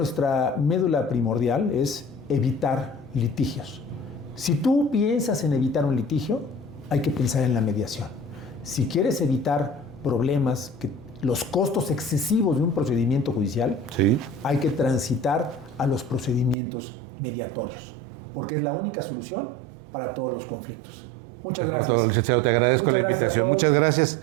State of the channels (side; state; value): left; drops out; at 16.6 s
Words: médula primordial es evitar litigios. Si tú piensas en evitar un litigio, hay que pensar en la mediación. Si quieres evitar problemas, los costos excesivos de un procedimiento judicial, sí, hay que transitar a los procedimientos mediatorios, porque es la única solución para todos los conflictos. Muchas gracias. Todo, licenciado, te agradezco. Muchas gracias a todos. Muchas gracias.